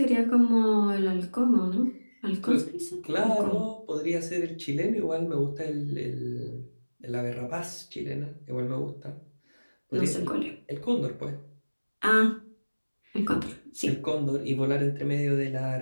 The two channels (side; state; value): both; inverted; correlation -1.00